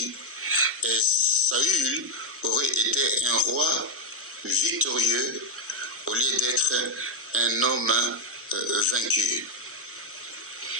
et Saül aurait été un roi victorieux au lieu d'être un homme vaincu.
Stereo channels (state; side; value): normal; both; correlation 0.03